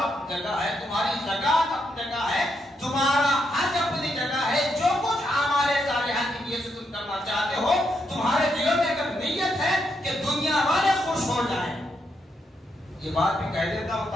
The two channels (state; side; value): normal; both; correlation 0.79